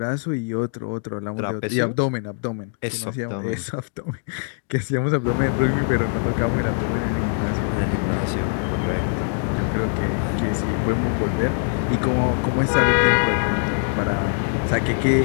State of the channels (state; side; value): silent; right; digital silence